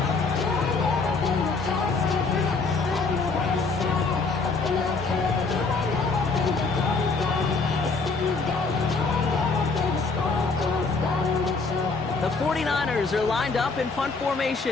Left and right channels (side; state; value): right; quieter; 4.2 dB